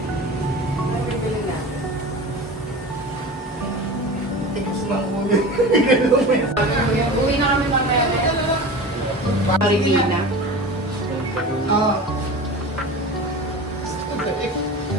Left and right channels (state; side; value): normal; both; correlation 0.33